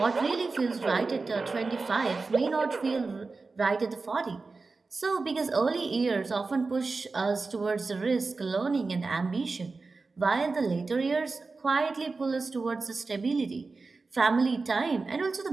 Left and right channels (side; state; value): left; quieter; 4.0 dB